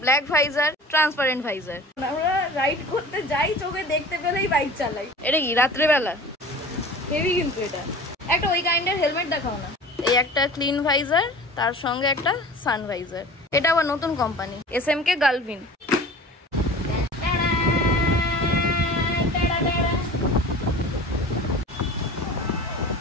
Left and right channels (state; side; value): normal; both; correlation 0.40